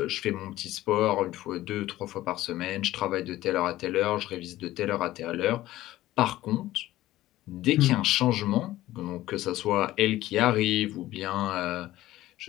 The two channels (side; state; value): right; quieter; 15.6 dB